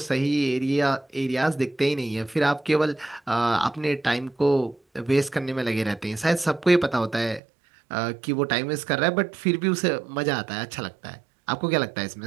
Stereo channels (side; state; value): left; drops out; at 7.4 s